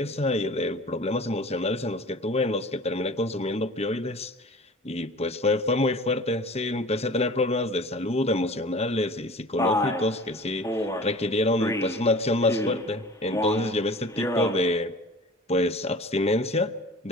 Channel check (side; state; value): both; normal; correlation 0.42